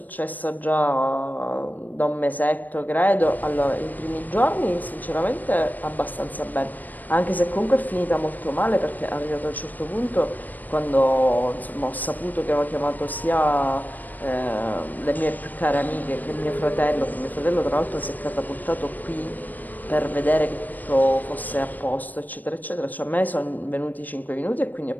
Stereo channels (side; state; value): right; late; 0.085 ms